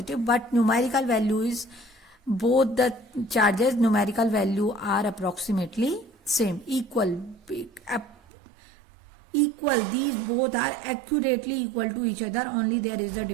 but numerical value is, both the charges numerical value are approximately same, equal. These both are accurately equal to each other, only there is a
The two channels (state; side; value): drops out; left; at 8.2 s